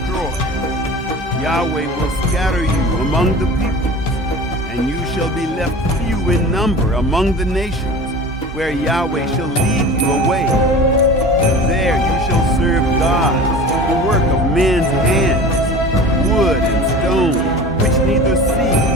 Yahweh will scatter you among the peoples, and you shall be left few in number among the nations, where Yahweh shall lead you away. There you shall serve gods, the work of men's hands, wood and stone, which neither see,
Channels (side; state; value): both; normal; correlation 0.37